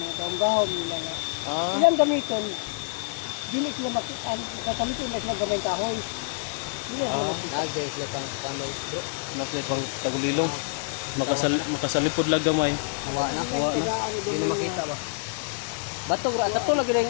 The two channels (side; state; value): right; silent; digital silence